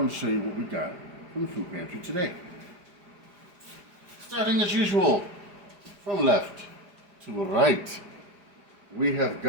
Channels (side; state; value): left; late; 4.9 ms